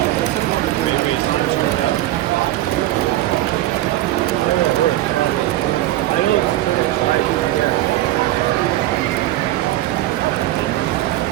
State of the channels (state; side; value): quieter; left; 15.4 dB